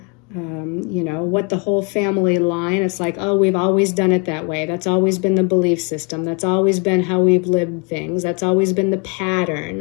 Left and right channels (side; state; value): right; quieter; 32.2 dB